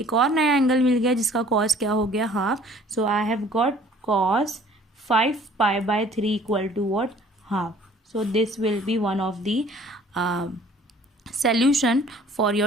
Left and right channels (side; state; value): both; normal; correlation 0.53